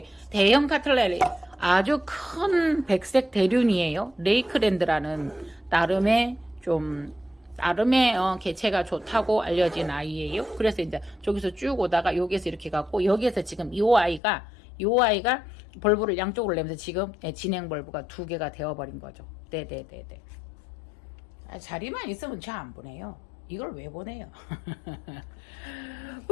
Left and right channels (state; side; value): drops out; right; at 14.2 s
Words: 대형 카틀레리, 아주 큰 백색 대륜이에요. 레이크랜드라는 나름의 개체가 좋다고 알려진 아이예요. 그래서 이제 저기서 쭉 오다가 여기에서 이렇게 갖고, 여기에서 지금 요 아이가 벌브를 양쪽으로 내면서 지금 진행 벌브가 2개가 되어버린 거죠. 네네네네. 자리만 있으면 저 안 보내요. 이걸 왜 보내요?